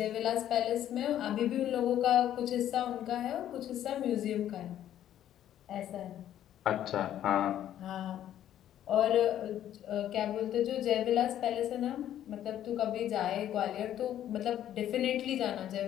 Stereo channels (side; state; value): right; quieter; 11.4 dB